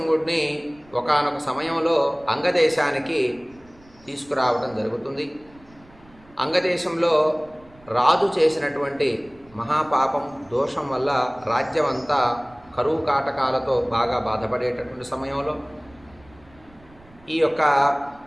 ఒకానొక సమయంలో అంగదేశానికి తీసుకురావడం జరుగుతుంది. అంగదేశంలో రాజు చేసినటువంటి మహాపాపం దోషం వల్ల రాజ్యం అంతా కరువు కాటకాలతో బాగా బాధపడేటటువంటి సమయంలో ఈ యొక్క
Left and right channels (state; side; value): noise; right; rumble, 27 dB below the sound